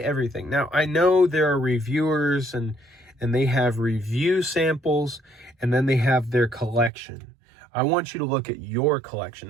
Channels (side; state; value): left; drops out; at 6.9 s